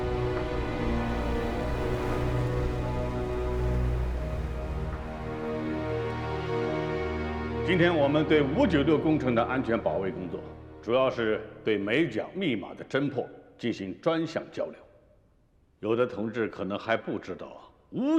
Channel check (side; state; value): both; identical; correlation 1.00